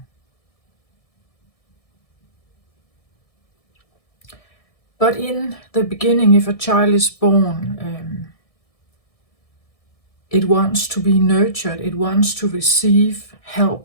But in the beginning, if a child is born, it wants to be nurtured, it wants to receive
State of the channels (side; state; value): right; late; 1.6 ms